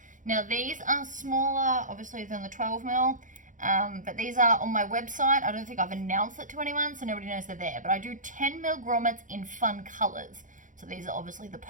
Now these are smaller, obviously, than the 12mm, but these are on my website. I don't think I've announced it to anyone, so nobody knows they're there. But I do 10mm grommets in fun colors. So these are obviously the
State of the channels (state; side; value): late; left; 0.37 ms